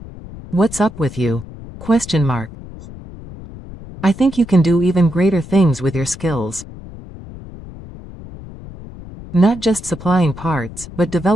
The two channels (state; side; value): noise; left; rumble, 15 dB below the sound